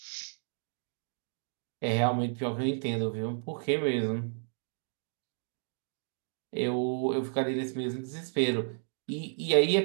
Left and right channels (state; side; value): silent; left; 56 dB below the other